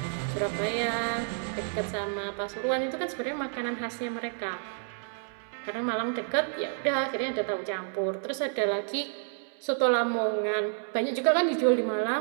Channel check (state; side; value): silent; left; 58 dB below the other